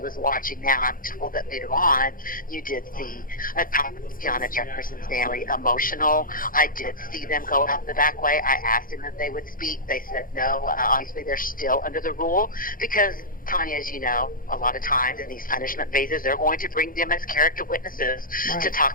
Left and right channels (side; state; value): right; late; 0.41 ms